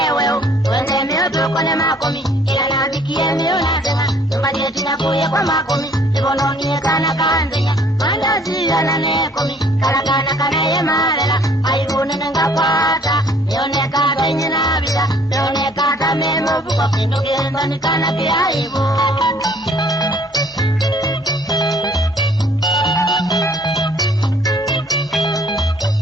Wende mioto kone makomi Ila nabikie miona tena Mbade tinakuye kwa makomi Ibono niekana kanzenya Mandazi ya nane komi Karakana kanaye marela Aibune nenga kwata Mione kata inye nabila Mione kata memo buko Kinuke ndani kana kia ibu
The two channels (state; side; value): normal; both; correlation 0.59